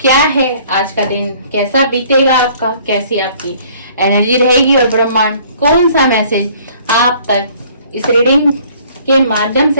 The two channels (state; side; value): inverted; both; correlation -0.56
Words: क्या है, आज का दिन कैसा बीतेगा आपका, कैसी आपकी एनर्जी रहेगी और ब्रह्मांड कौन सा मैसेज आप तक इस रीडिंग के माध्यम